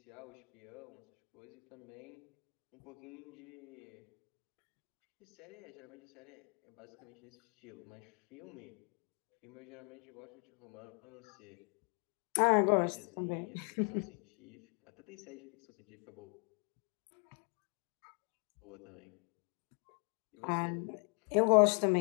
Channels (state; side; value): quieter; right; 37.6 dB